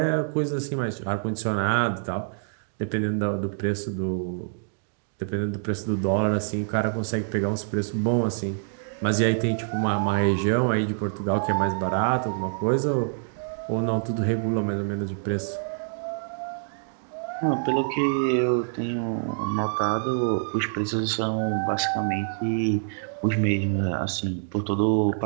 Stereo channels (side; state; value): left; silent; digital silence